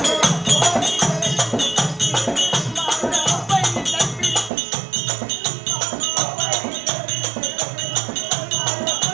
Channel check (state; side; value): drops out; left; at 4.5 s